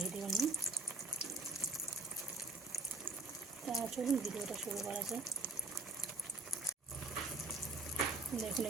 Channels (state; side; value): quieter; left; 3.4 dB